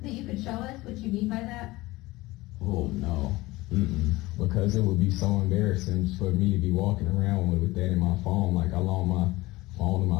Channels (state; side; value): quieter; right; 19.9 dB